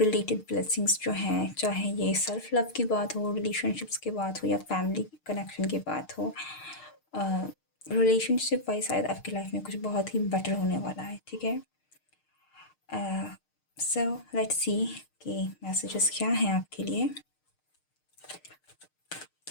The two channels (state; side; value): late; right; 6.5 ms